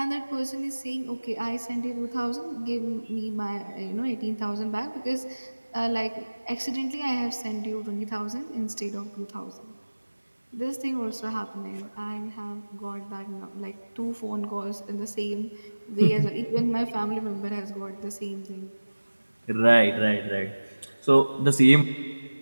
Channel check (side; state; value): both; inverted; correlation -1.00